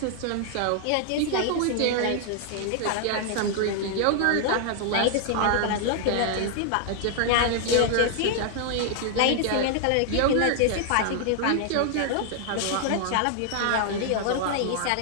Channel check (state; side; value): different; both; correlation 0.00